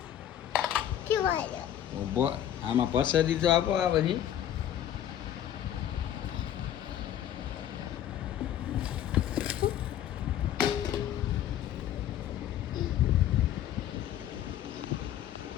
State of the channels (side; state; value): right; quieter; 11.0 dB